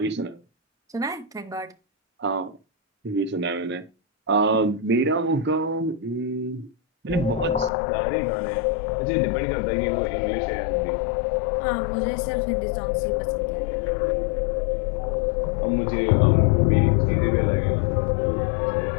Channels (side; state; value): right; drops out; at 7.7 s